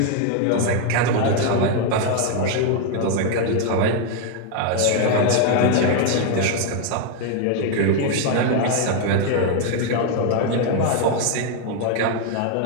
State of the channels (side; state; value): both; different; correlation 0.01